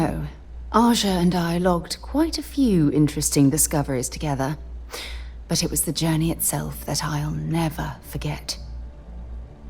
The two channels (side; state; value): both; identical; correlation 1.00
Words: Aja and I logged quite a few interesting discoveries together. But it was the journey itself that I'll never forget.